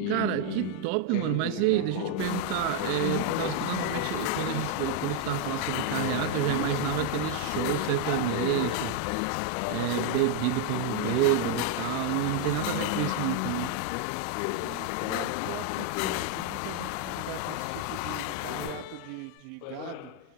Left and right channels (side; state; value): both; different; correlation 0.00